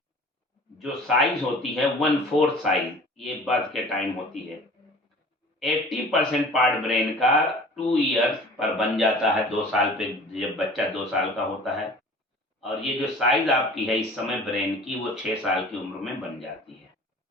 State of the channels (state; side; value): normal; both; correlation 0.45